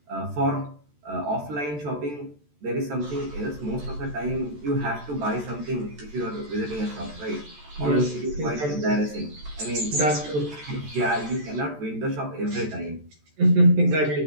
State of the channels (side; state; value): left; late; 14 ms